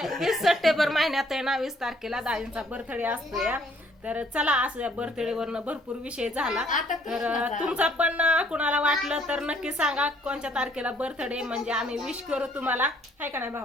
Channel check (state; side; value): normal; both; correlation 0.63